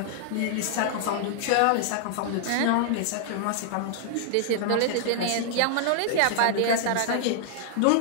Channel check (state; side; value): different; both; correlation 0.00